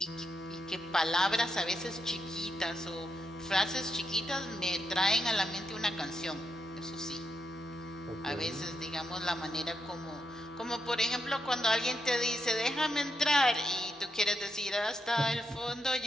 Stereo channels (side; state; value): both; normal; correlation 0.82